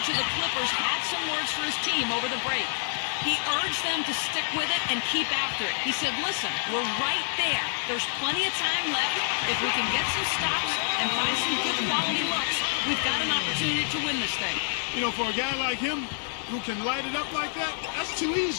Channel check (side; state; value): right; silent; digital silence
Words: of the Clippers had some words for his team over the break. He urged them to stick with it and keep after it. He said, listen, we're right there. There's plenty of time left. If we can get some stops and find some good quality looks, we've got an opportunity to win this thing. You know, for a guy like him who can light it up like that, that's too